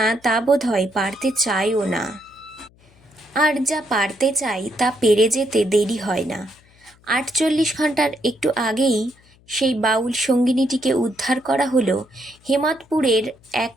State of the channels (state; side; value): noise; left; hum, 30 dB below the sound